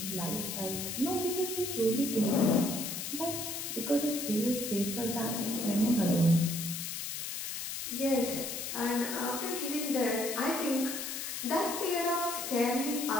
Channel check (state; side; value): noise; left; hiss, 5 dB below the sound